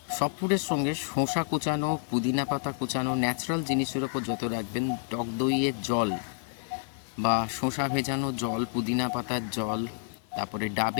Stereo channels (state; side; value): silent; right; 57 dB below the other